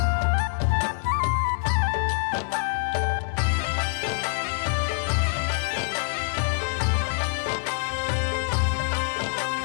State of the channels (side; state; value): right; silent; 61 dB below the other